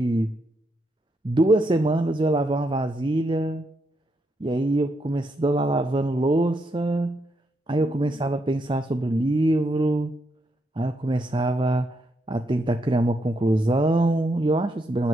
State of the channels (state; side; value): normal; both; correlation 0.79